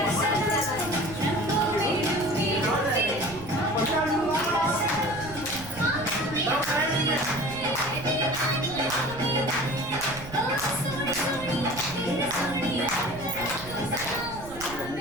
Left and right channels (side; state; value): right; noise; rumble, 14 dB below the sound